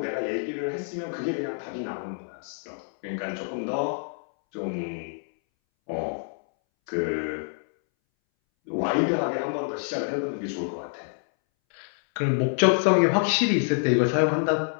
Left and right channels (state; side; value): silent; right; 60 dB below the other